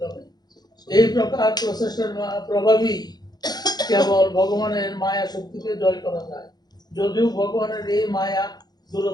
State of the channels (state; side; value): late; right; 0.19 ms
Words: এই প্রকার প্রচেষ্টার প্রভাবই কেবল ভগবানের মায়া শক্তিকে জয় করা যায়। যদিও ভগবানের এই মায়া